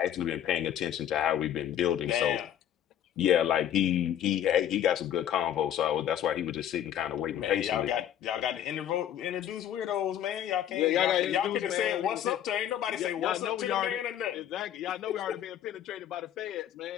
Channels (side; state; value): right; quieter; 10.6 dB